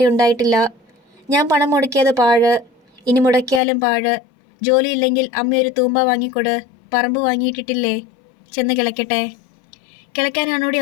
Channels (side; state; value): right; drops out; at 3.6 s